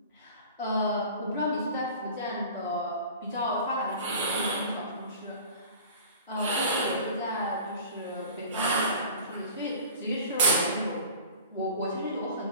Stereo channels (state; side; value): inverted; both; correlation -0.41